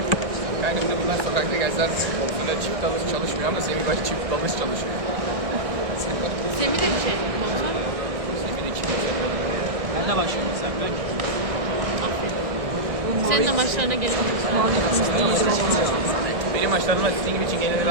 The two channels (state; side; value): late; left; 1.6 ms